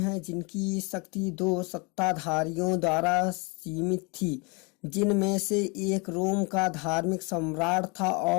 जिनकी शक्ति दो सत्ताधारियों द्वारा सीमित थी, जिनमें से एक रोम का धार्मिक सम्राट था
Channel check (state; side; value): quieter; right; 30.4 dB